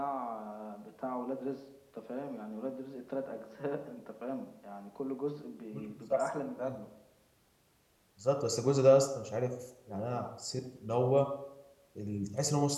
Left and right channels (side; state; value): both; identical; correlation 1.00